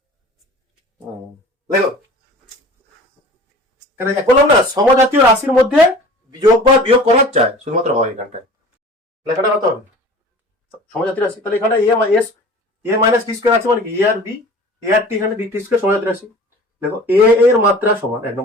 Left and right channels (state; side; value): normal; both; correlation 0.42